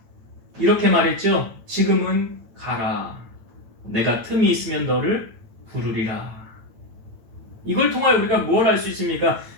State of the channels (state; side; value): late; left; 9.0 ms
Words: 이렇게 말했죠. 지금은 가라. 내가 틈이 있으면 너를 부르리라. 이걸 통하여 우리가 뭘 알 수 있습니까?